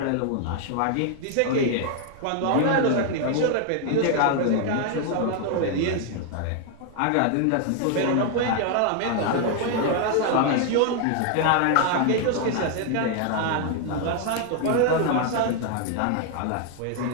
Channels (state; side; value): different; both; correlation 0.00